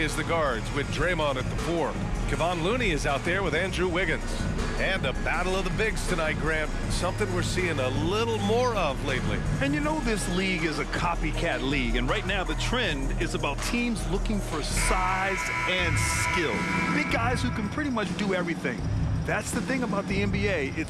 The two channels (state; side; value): identical; both; correlation 1.00